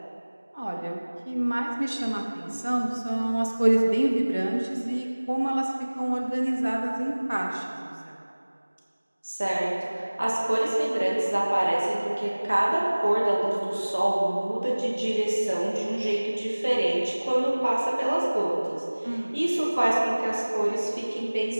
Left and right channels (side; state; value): both; inverted; correlation -1.00